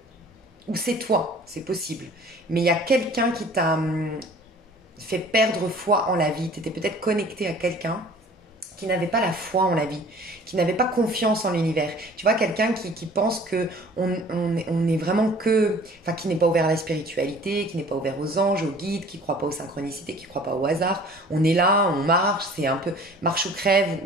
ou c'est toi, c'est possible, mais il y a quelqu'un qui t'a fait perdre foi en la vie. Tu étais peut-être connecté à quelqu'un qui n'avait pas la foi en la vie, qui n'avait pas confiance en l'univers. Tu vois, quelqu'un qui pense que on est vraiment que... Enfin, qui n'est pas ouvert à la spiritualité, qui n'est pas ouvert aux anges, aux guides, qui ne croit pas aux synchronicités, qui ne croit pas au hasard. On est là, on marche, c'est un peu marche ou crève.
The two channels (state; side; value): normal; both; correlation 0.49